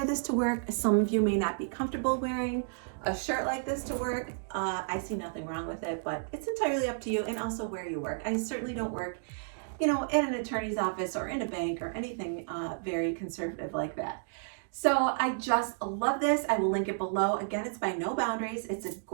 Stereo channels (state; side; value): silent; left; digital silence